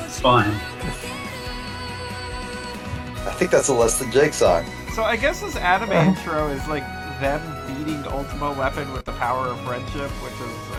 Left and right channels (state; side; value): identical; both; correlation 1.00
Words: It's fine. I think that's a Less Than Jake song. So I guess this anime intro is like them beating Ultima Weapon with the power of friendship, which is,